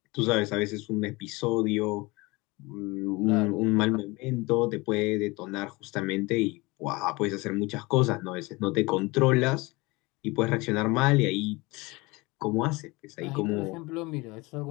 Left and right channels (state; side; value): quieter; right; 23.8 dB